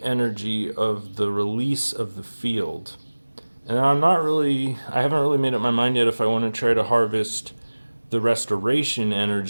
energy of the release of the field. And I haven't really made up my mind yet if I want to try to harvest the restoration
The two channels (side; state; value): both; inverted; correlation -1.00